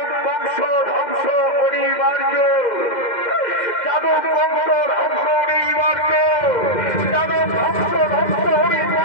বংশ ধ্বংস অনিবার্য। যাদব বংশ ধ্বংস অনিবার্য। যাদব বংশ ধ্বংস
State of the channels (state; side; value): late; right; 2.1 ms